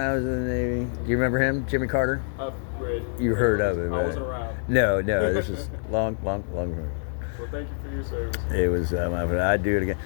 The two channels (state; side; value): silent; right; digital silence